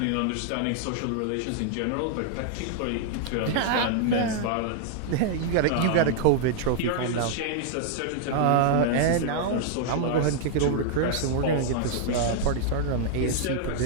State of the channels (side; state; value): both; different; correlation -0.01